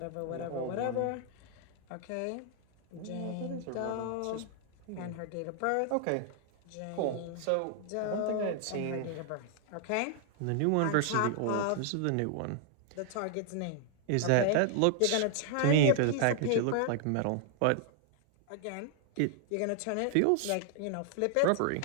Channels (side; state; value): both; different; correlation 0.00